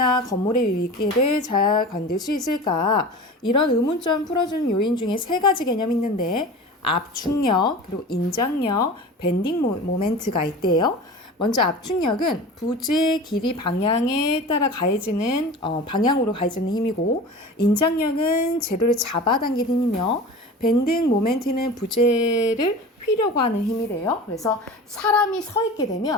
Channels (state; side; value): normal; both; correlation 0.35